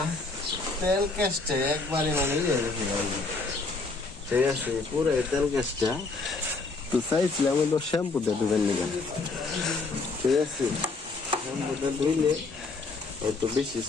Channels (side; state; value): right; quieter; 3.8 dB